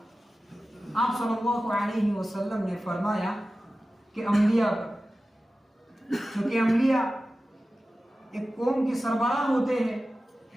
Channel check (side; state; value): both; normal; correlation 0.95